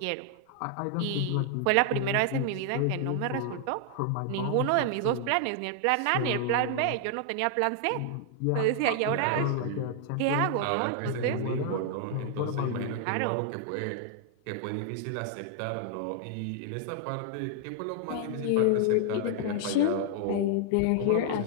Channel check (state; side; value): different; both; correlation 0.00